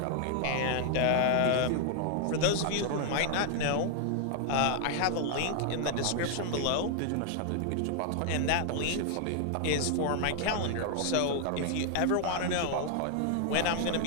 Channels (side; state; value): both; different; correlation 0.00